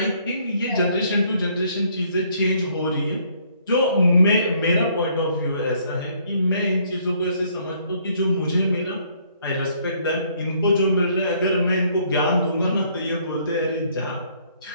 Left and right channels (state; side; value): inverted; both; correlation -0.65